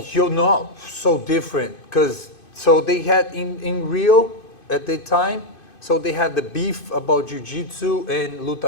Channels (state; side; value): late; right; 2.5 ms